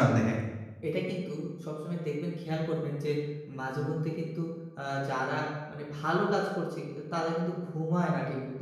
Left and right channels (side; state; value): both; identical; correlation 1.00